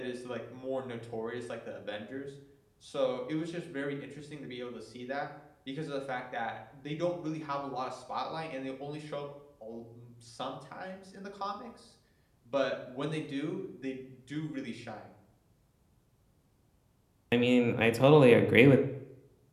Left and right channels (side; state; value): both; identical; correlation 1.00